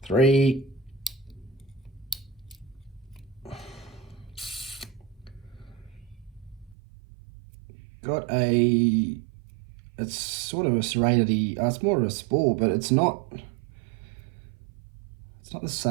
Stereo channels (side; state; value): left; drops out; at 6.8 s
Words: Three. Got a, it's sort of a serrated-y, it's more of a spool, but it's not the